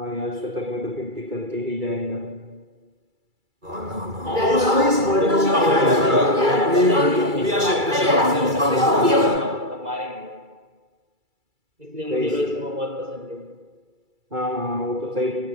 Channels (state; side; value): late; left; 2.3 ms